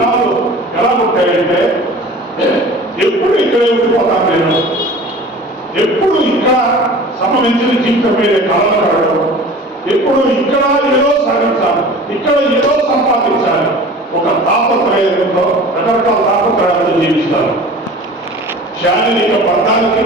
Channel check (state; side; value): normal; both; correlation 0.41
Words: ఎలా ఉంటాయంటే ఎప్పుడు ఇక్కడే ఉండిపోతాను నేను, ఎప్పుడు ఇక్కడ సంబంధించిన జీవితం మీద కళలు కడగడం, ఎప్పుడు ఇక్కడ ఏదో సాధించాలి, ఇక్కడ ఏదో సంపాదించాలి, ఒక తాపత్రయంతో రకరకాల తాపత్రయాలతో జీవిస్తారు. శారీరక బంధానికి